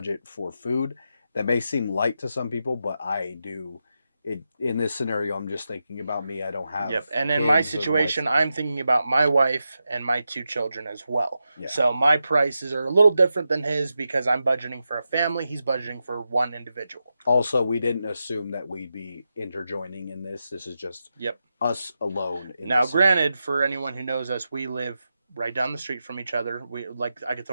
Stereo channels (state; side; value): inverted; both; correlation -0.89